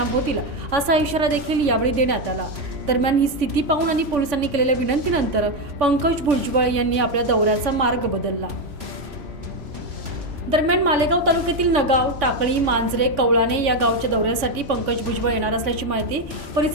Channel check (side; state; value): left; late; 3.5 ms